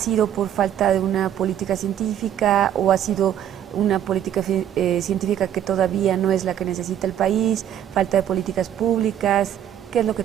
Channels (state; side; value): quieter; left; 10.4 dB